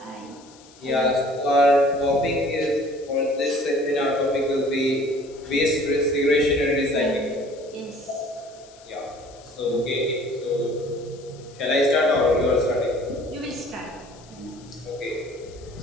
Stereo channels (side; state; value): left; noise; hiss, 24 dB below the sound